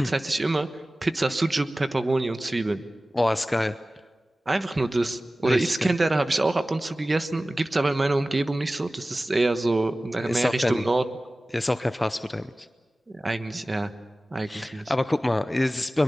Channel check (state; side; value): normal; both; correlation 0.97